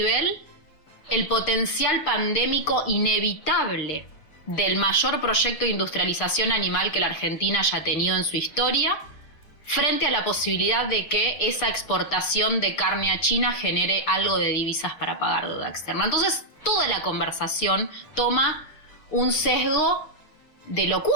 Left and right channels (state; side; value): late; right; 6.3 ms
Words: el potencial pandémico inevitable del mayor proyecto de industrialización animal que la Argentina haya tenido en su historia, frente a la posibilidad de que esa exportación de carne a China genere algo de divisas para pagar deuda externa. Entonces, toda la conversación toma un sesgo de